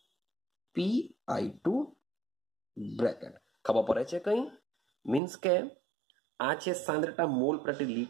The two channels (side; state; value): left; drops out; at 5.2 s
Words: PI2 bracket. ખબર પડે છે કંઈ? મીન્સ કે આ છે સાંદ્રતા મોલ પ્રતિ